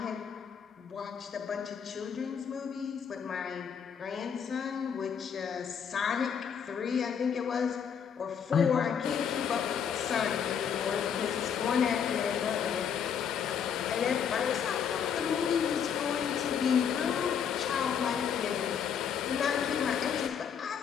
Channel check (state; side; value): quieter; right; 7.6 dB